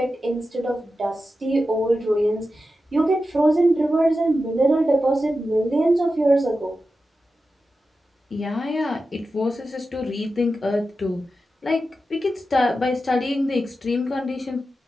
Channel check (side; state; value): both; normal; correlation 0.91